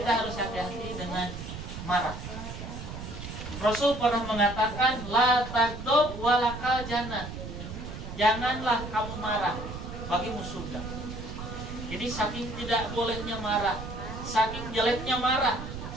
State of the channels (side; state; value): right; noise; rumble, 9 dB below the sound